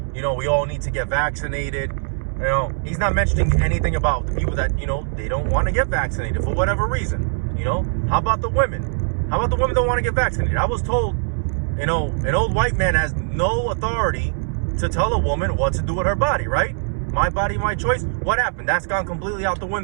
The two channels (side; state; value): left; silent; 65 dB below the other